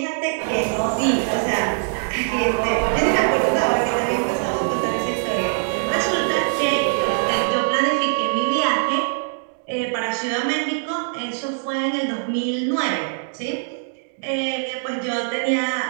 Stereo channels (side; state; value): left; silent; digital silence